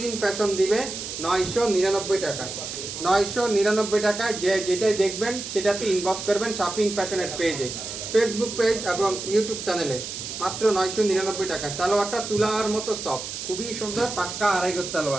ফ্যাশন দিবে 999 টাকা, 999 টাকায়। যে যেটাই দেখবেন সেটাতে ইনবক্স করবেন শপিং ফ্যাশনের পেজে, ফেসবুক পেজ এবং ইউটিউব চ্যানেলে। মাত্র 999 টাকা। সালোয়ারটা তুলার মতো সফট, খুবই সুন্দর, পাক্কা 2.5 গজ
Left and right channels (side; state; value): right; noise; hiss, 7 dB below the sound